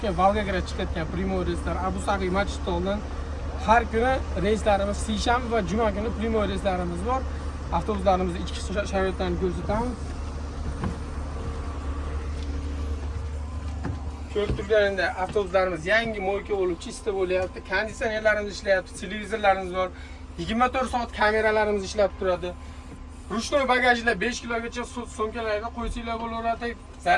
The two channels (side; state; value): both; identical; correlation 1.00